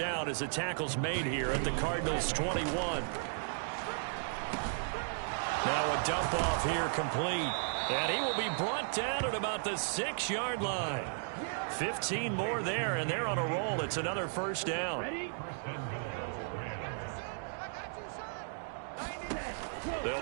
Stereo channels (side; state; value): left; silent; digital silence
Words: as the tackle's made here at the Cardinals' 21. Now a dump off here complete. And he will be brought down at about the 6-yard line. 15 more there, and they're on a roll. It's another first down.